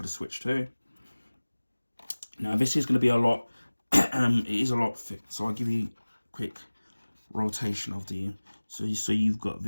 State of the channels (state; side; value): inverted; both; correlation -1.00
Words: the Switch 2. Now this is going to be a lot, it is a lot thick. So I'll give you a quick rotation of the, so you've got